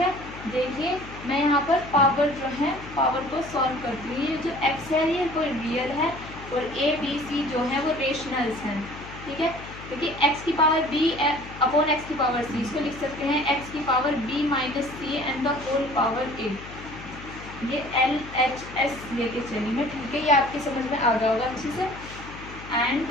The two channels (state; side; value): noise; left; hum, 14 dB below the sound